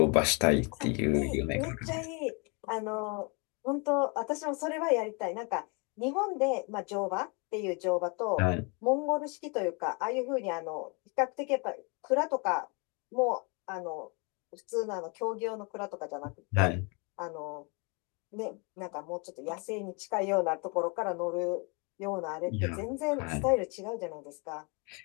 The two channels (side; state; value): right; quieter; 32.4 dB